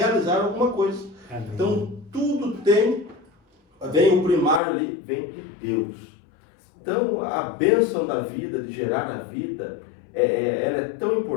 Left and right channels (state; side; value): drops out; right; at 4.6 s